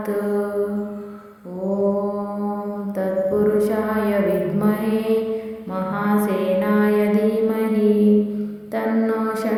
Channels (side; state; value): both; identical; correlation 1.00